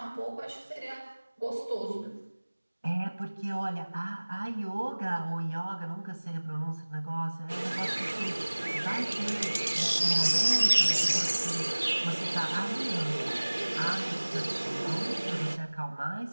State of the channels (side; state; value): both; inverted; correlation -1.00